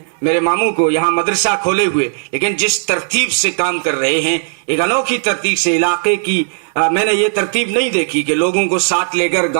मेरे मामू को यहाँ मदरसा खोले हुए, लेकिन जिस तरतीब से काम कर रहे हैं, एक अनोखी तरतीब से, इलाके की मैंने ये तरतीब नहीं देखी कि लोगों को साथ लेकर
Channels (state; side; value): silent; left; digital silence